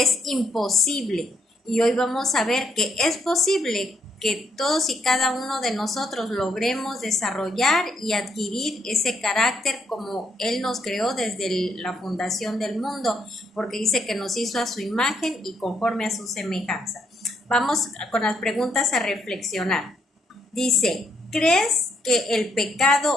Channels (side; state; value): both; normal; correlation 0.75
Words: imposible. Y hoy vamos a ver que es posible que todos y cada uno de nosotros logremos desarrollar y adquirir ese carácter como Él nos creó desde la fundación del mundo, porque dice que nos hizo a su imagen y conforme a su semejanza. Vamos con las preguntas a reflexionar. Dice, ¿crees que el